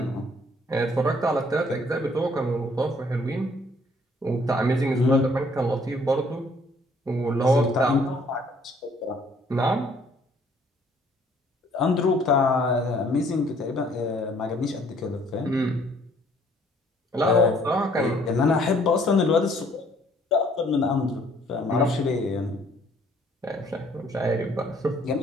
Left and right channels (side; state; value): both; normal; correlation 0.61